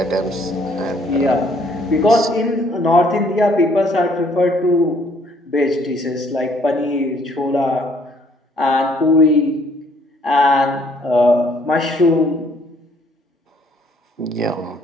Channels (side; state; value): both; normal; correlation 0.63